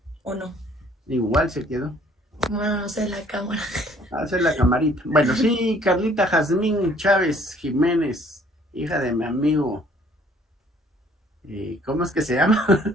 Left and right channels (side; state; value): both; normal; correlation 0.59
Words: o no. Igual se quedó. Bueno, no sé, la cámara. Hacer la camarita. Bueno, sí, Carlita Jazmín Chávez Jiménez, hija de mi amigo. ¿Cómo es que se llama?